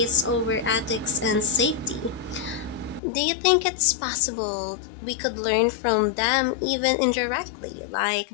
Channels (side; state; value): right; drops out; at 3.0 s